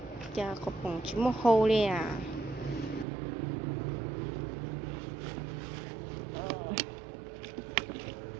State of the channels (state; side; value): drops out; left; at 3.1 s